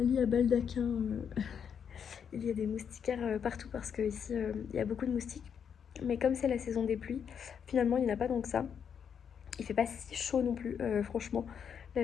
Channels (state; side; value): quieter; right; 7.6 dB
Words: à baldaquin. Il y a des moustiquaires partout, parce que ici il y a beaucoup de moustiques. Mais comme c'est la saison des pluies, finalement il n'y en a pas tant que ça. Il fait pas si chaud non plus, franchement.